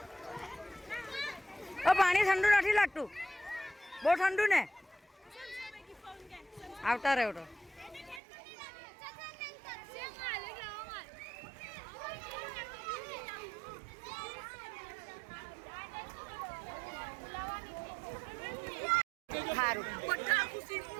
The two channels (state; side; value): drops out; left; at 8.2 s